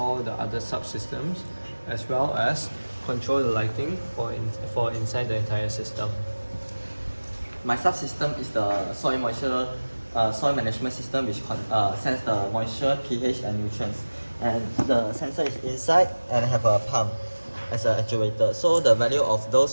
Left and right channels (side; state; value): both; inverted; correlation -1.00